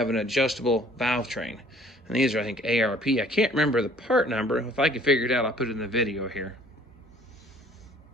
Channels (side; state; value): both; normal; correlation 0.55